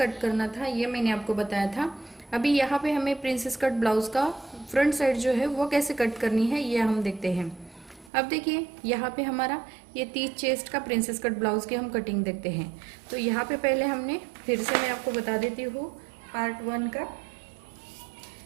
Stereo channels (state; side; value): drops out; left; at 8.1 s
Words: करना था ये मैंने आपको बताया था। अभी यहाँ पे हमें प्रिंसेस कट ब्लाउज़ का फ्रंट साइड जो है वो कैसे कट करनी है ये हम देखते हैं। अब देखिए यहाँ पे हमारा ये 30 चेस्ट का प्रिंसेस कट ब्लाउज़ की हम कटिंग देखते हैं। तो यहाँ पे पहले हमने फिर से मैं आपको बता देती हूँ पार्ट 1 का।